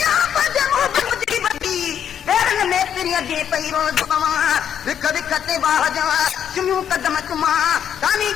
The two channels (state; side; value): quieter; right; 9.0 dB